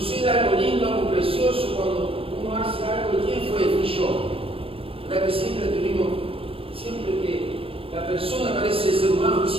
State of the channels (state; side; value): late; left; 0.27 ms